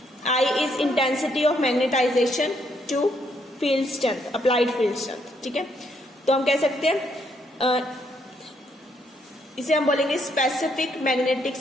I is intensity of magnetization to field strength, applied field strength, ठीक है। तो हम कह सकते हैं इसे हम बोलेंगे स्पेसिफिक मैग्नेटिक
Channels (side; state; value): both; normal; correlation 0.73